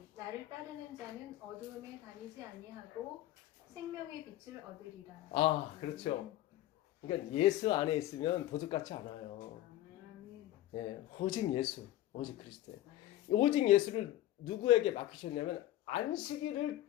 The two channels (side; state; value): right; quieter; 14.2 dB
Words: 나를 따르는 자는 어두움에 다니지 아니하고 생명의 빛을 얻으리라. 아, 그렇죠. 그러니까 예수 안에 있으면 도둑같지 않아요. 예, 오직 예수, 오직 그리스도. 오직 예수를 누구에게 맡기셨냐면 안식일을